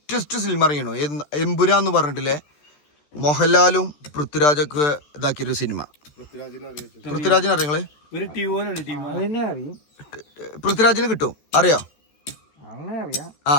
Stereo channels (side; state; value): right; late; 14 ms